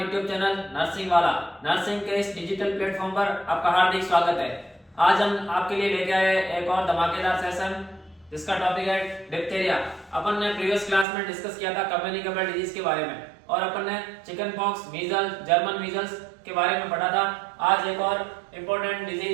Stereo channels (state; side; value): drops out; left; at 11.1 s